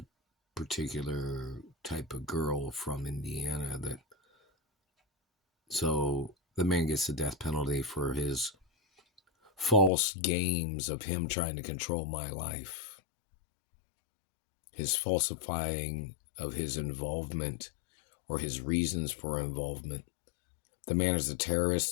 particular type of girl from Indiana so the man gets the death penalty for his false games of him trying to control my life. His falsifying of his involvement or his reasons for involvement. The man is a terrorist,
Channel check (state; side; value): drops out; right; at 9.9 s